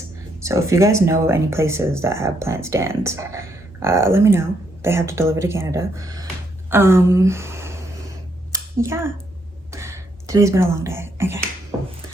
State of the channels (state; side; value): normal; both; correlation 0.75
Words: So if you guys know any places that have plant stands, let me know. They have to deliver to Canada. Yeah. Today's been a long day. Okay.